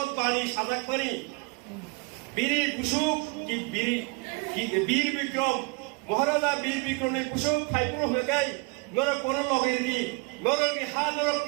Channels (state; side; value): quieter; left; 29.5 dB